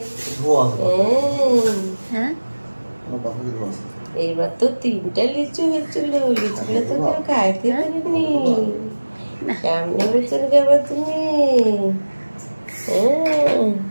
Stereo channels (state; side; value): inverted; both; correlation -1.00